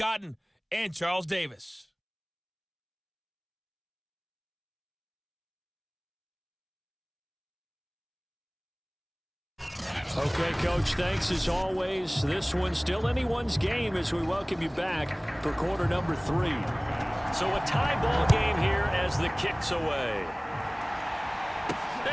and Charles Davis. Okay, Coach, thanks as always. This one's still anyone's game as we welcome you back for quarter number 3. So a tie ball game here as the kick's away.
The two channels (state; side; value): identical; both; correlation 1.00